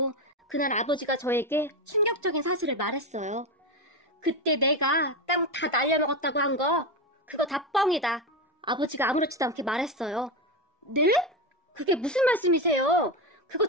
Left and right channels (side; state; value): both; normal; correlation 0.14